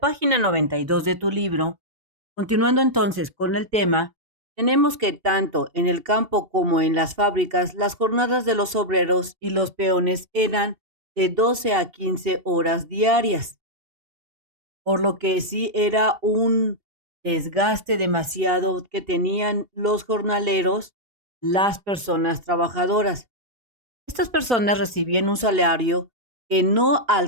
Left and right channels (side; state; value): left; late; 2.7 ms